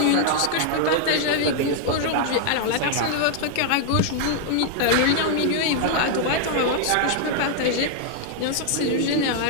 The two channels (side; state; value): both; different; correlation 0.00